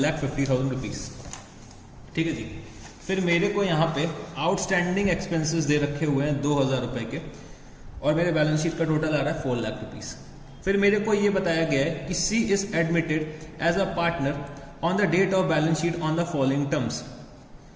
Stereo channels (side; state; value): both; identical; correlation 1.00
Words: rupees. ठीक है जी. फिर मेरे को यहाँ पे आउटस्टैंडिंग एक्सपेंसेस दे रखे हुए हैं 2,000 रुपए के, और मेरे बैलेंस शीट का टोटल आ रहा है 4 लाख रुपीज. फिर मेरे को ये बताया गया है कि C is admitted as a partner on the date of balance sheet on the following terms.